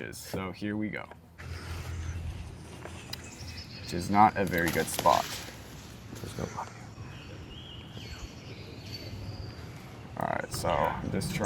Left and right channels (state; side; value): identical; both; correlation 1.00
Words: So here we go. Which is not a very good spot. There's nobody. Alright, so I'm just